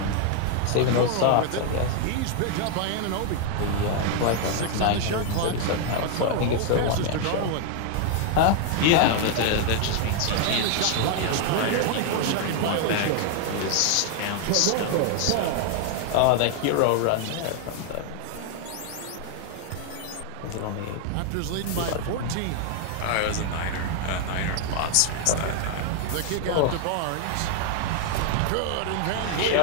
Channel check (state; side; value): different; both; correlation 0.00